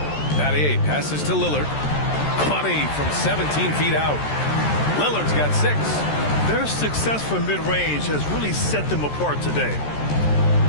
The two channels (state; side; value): late; right; 14 ms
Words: Battier passes to Lillard. Money from 17 feet out. Lillard's got 6. Their success from mid-range has really set them apart today.